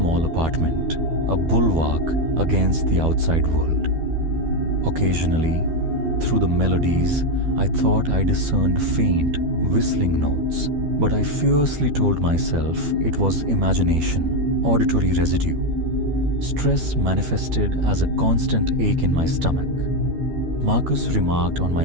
apartment, a bulwark against the outside world. Occasionally, through the melodies, I thought I discerned faint, whistling notes, but I fiercely told myself it was imagination, auditory residue. Stress manifested as a constant ache in my stomach. Marcus remarked on my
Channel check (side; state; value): left; late; 12 ms